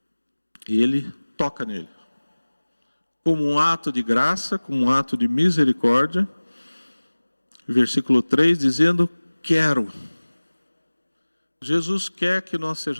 ele toca nele. Como um ato de graça, como um ato de misericórdia. Versículo 3, dizendo, quero. Jesus quer que nós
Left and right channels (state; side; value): inverted; both; correlation -1.00